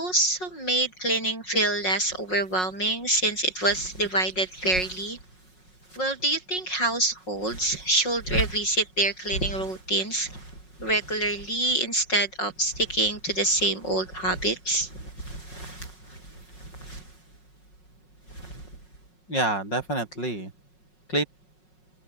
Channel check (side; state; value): right; late; 5.5 ms